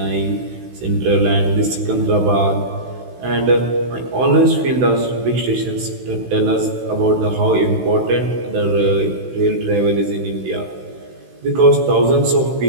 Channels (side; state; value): left; late; 16 ms